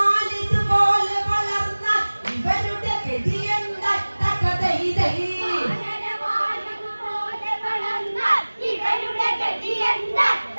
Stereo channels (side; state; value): both; inverted; correlation -1.00